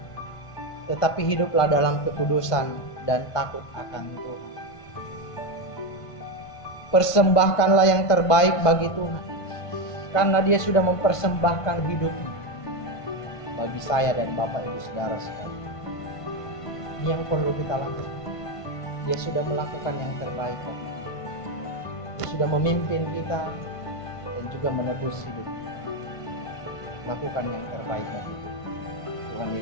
tetapi hiduplah dalam kekudusan dan takut akan Tuhan. Persembahkanlah yang terbaik bagi Tuhan, karena Dia sudah mempersembahkan hidupnya bagi saya dan Bapak Ibu Saudara sekalian. Ini yang perlu kita lakukan. Dia sudah melakukan yang terbaik. Dia sudah memimpin kita dan juga menebus hidup kita. Lakukan yang terbaik bagi Tuhan. Tuhan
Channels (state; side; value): late; right; 1.5 ms